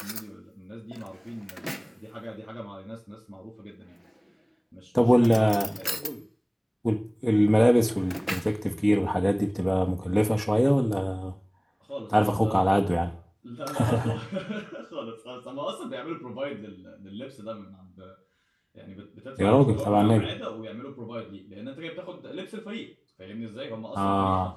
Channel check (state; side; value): identical; both; correlation 1.00